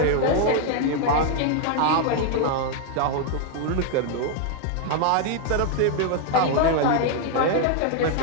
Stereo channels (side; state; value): both; different; correlation 0.00